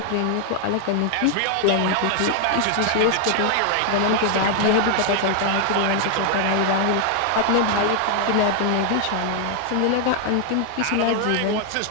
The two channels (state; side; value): different; both; correlation 0.00